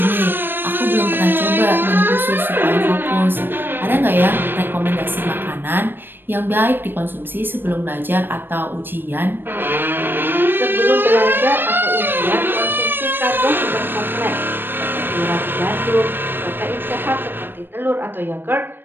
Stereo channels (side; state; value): left; late; 0.097 ms